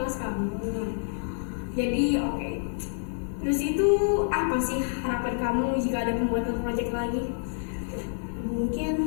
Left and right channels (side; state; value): right; silent; digital silence